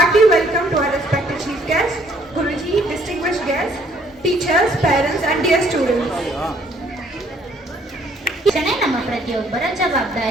hearty welcome to our respected chief guests, Guruji, distinguished guests, teachers, parents and dear students. ಶಿಕ್ಷಣ ನಮ್ಮ ಪ್ರತಿಯೊಬ್ಬರ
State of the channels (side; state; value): both; normal; correlation 0.63